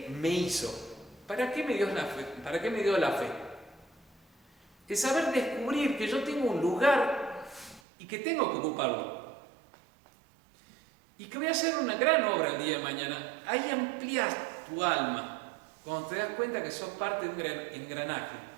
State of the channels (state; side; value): drops out; left; at 7.8 s